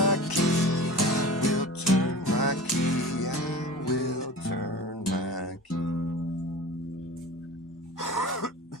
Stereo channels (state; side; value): normal; both; correlation 0.36